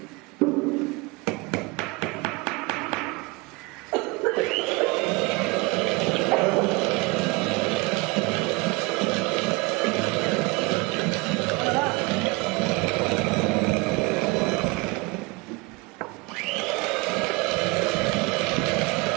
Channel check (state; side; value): quieter; left; 25.7 dB